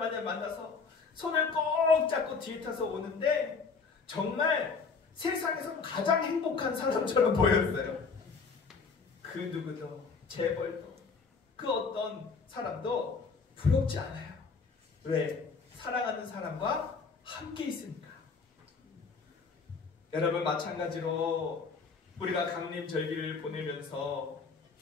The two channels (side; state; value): right; quieter; 4.9 dB